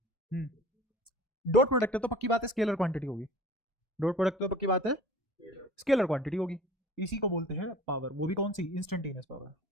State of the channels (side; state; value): both; normal; correlation 0.44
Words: डॉट प्रोडक्ट है तो पक्की बात है स्केलर क्वांटिटी होगी। डॉट प्रोडक्ट तो पक्की बात है स्केलर क्वांटिटी होगी। इसी को बोलते हैं पावर, वो भी कौन सी? Instantaneous power.